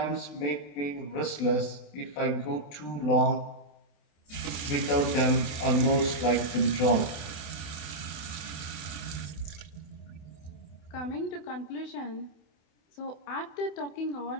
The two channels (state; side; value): late; right; 27 ms